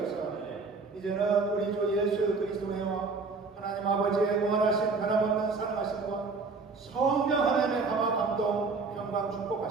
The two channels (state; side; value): quieter; left; 4.3 dB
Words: 이제는 우리 주 예수 그리스도의 하나님 아버지의 무한하신 변함없는 사랑하심과 성령 하나님의 감화 감동 평강